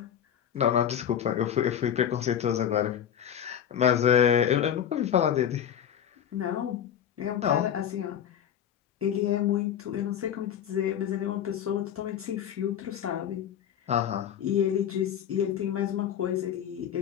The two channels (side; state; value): right; quieter; 9.4 dB